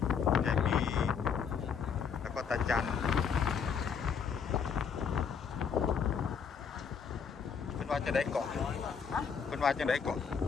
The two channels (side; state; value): right; quieter; 6.6 dB